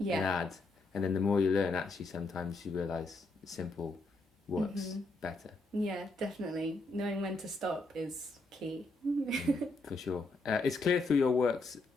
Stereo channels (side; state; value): right; quieter; 3.1 dB